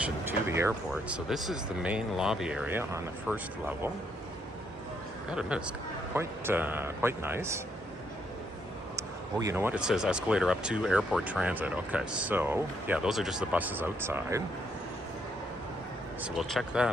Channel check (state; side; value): normal; both; correlation 0.74